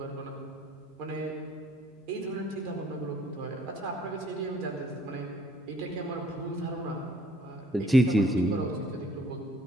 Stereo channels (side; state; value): both; normal; correlation 0.59